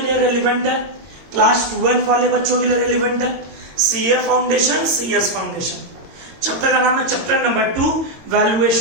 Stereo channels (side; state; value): left; late; 22 ms